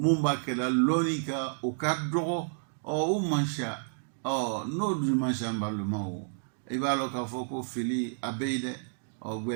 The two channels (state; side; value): silent; left; digital silence